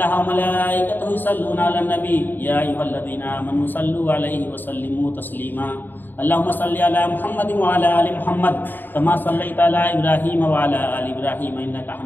وملائکتہ یصلون علی النبی یا ایھا الذین آمنوا صلوا علیہ وسلموا تسلیما اللہم صل علی محمد وعلی آل محمد کما صلیت علی ابراہیم وعلی آل ابراہیم انک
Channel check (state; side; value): late; right; 0.092 ms